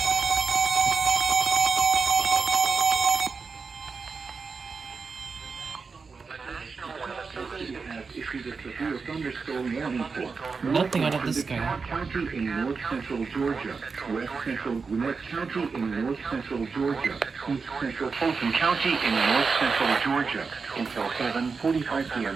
Has issued a severe thunderstorm warning for Nothing out of this guy. DeKalb County in north central Georgia, west central Gwinnett County in north central Georgia, east central Fulton County in north central Georgia until 7:45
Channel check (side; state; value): left; quieter; 4.9 dB